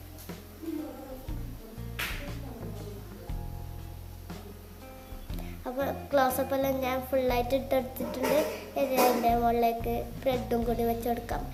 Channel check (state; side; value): identical; both; correlation 1.00